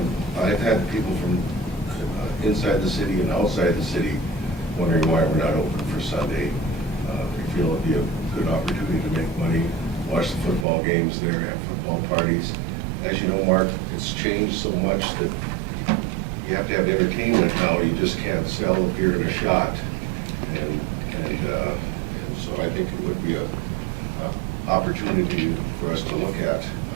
I've had people from inside the city and outside the city wondering why we're not open for Sunday. We feel it'd be a good opportunity to make money, watch the football games there, have football parties. As you know, Mark, it's changed so much that you have to have entertainment now. You just can't sell a beer and a shot. And so I think it would be a opportunity for us to look at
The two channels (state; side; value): drops out; left; at 10.7 s